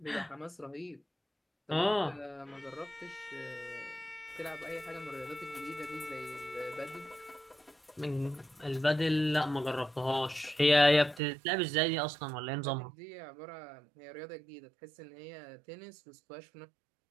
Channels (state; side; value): drops out; left; at 11.2 s